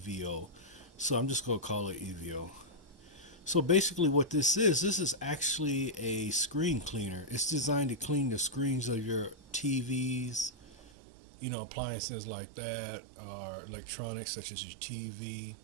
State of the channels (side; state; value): left; drops out; at 10.9 s